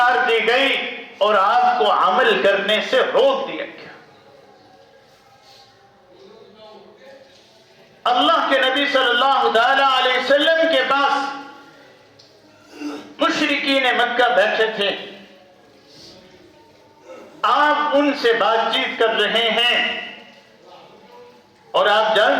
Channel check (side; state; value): both; identical; correlation 1.00